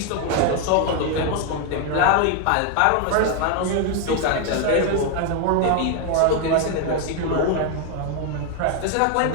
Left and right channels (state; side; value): different; both; correlation 0.01